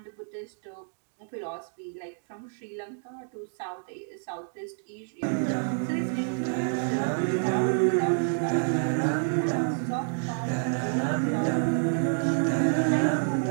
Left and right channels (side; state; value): left; silent; 59 dB below the other